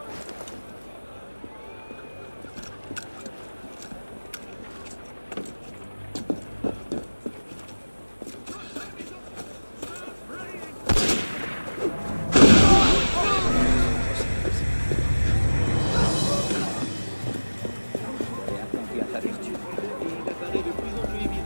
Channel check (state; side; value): inverted; both; correlation -1.00